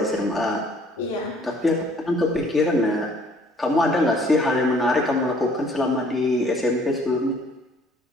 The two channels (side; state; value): both; normal; correlation 0.58